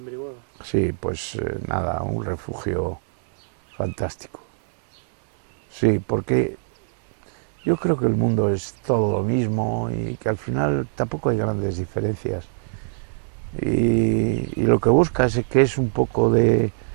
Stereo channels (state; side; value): silent; left; 64 dB below the other